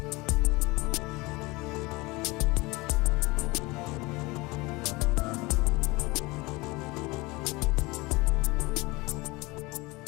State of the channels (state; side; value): quieter; right; 23.2 dB